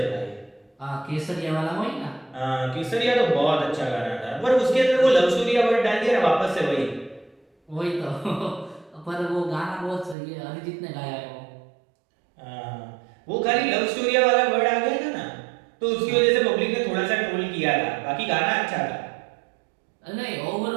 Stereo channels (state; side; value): drops out; left; at 10.2 s